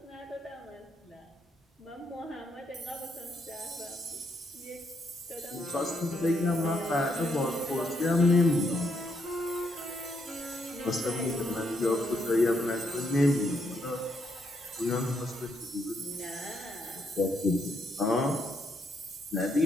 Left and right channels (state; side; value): normal; both; correlation 0.76